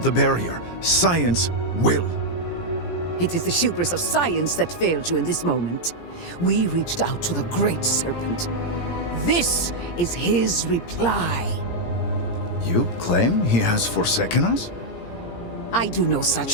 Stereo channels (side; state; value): right; late; 17 ms